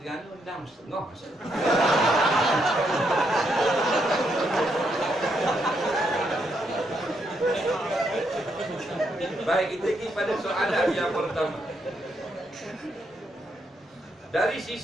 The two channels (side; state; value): both; normal; correlation 0.77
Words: 6.30 masa. Baik, kita pergi pada soalan yang pertama. Dari